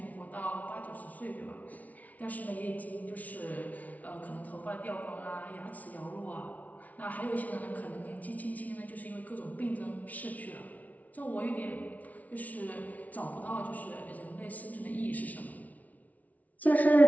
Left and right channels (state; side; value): late; right; 0.072 ms